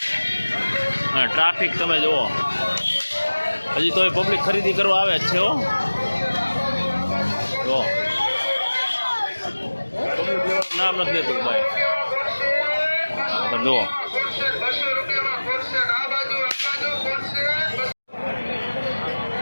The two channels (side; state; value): both; inverted; correlation -1.00